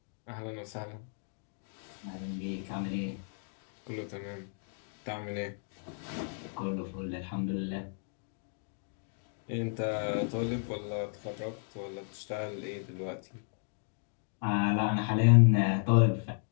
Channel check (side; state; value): right; silent; 55 dB below the other